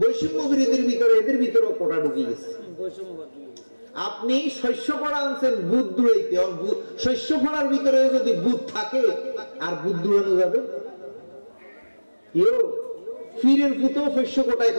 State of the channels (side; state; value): both; inverted; correlation -1.00